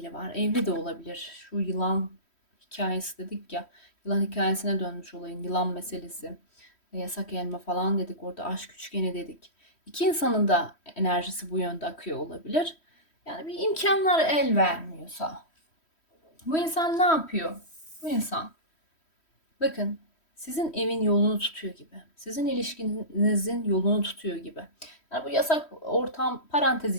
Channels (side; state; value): right; late; 3.1 ms